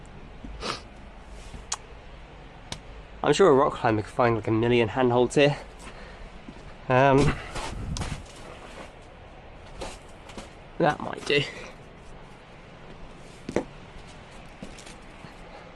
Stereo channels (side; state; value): both; identical; correlation 1.00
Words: I'm sure a rock climber could find like a million handholds here. That might do.